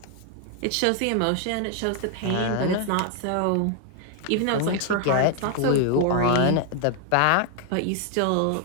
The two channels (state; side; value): different; both; correlation 0.00